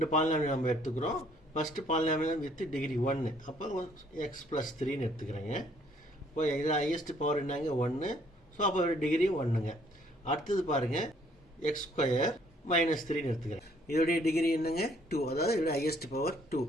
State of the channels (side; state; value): both; normal; correlation 0.63